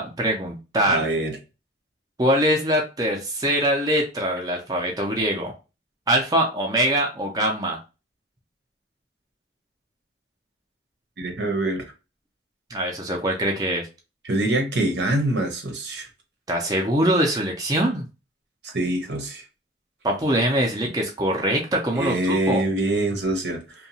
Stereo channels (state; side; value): normal; both; correlation 0.34